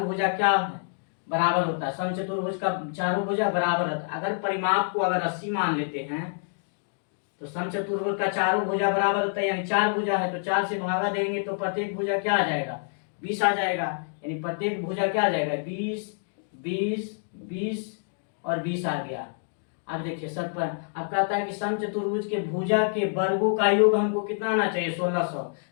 भुजा क्या है, बराबर होता है। समचतुर्भुज का चारों भुजा बराबर होता है। अगर परिमाप को अगर 80 मान लेते हैं, तो समचतुर्भुज का चारों भुजा बराबर होता है, यानी 4 भुजा है तो 4 से भागा देंगे तो प्रत्येक भुजा क्या आ जाएगा, 20 आ जाएगा। यानी प्रत्येक भुजा क्या आ जाएगा, 20 20 20 और 20 आ गया। अब देखिए सब पर अब कहता है कि समचतुर्भुज के भुजा के वर्गों का योग हमको कितना आना चाहिए, 1600।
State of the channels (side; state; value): right; silent; digital silence